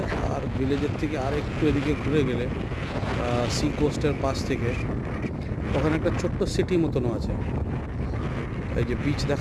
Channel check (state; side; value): identical; both; correlation 1.00